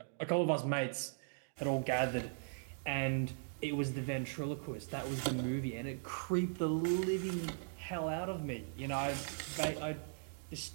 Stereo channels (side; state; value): left; silent; digital silence